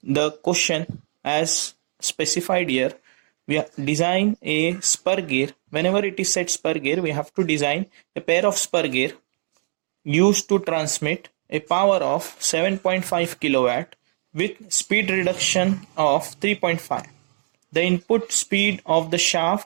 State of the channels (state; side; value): silent; left; digital silence